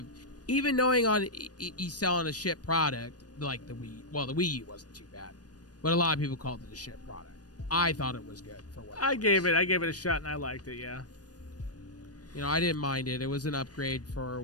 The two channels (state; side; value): late; right; 0.69 ms